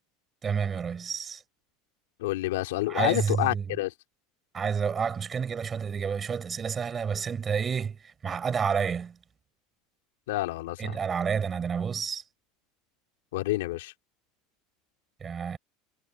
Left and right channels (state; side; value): normal; both; correlation 0.46